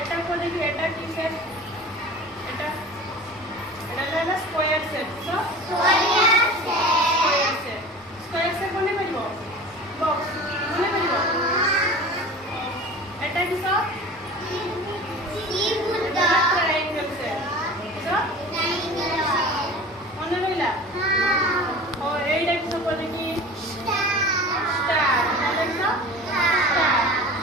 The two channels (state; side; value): normal; both; correlation 0.38